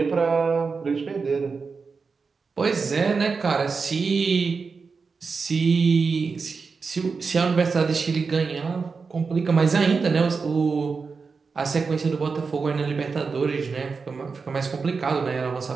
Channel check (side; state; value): left; quieter; 4.9 dB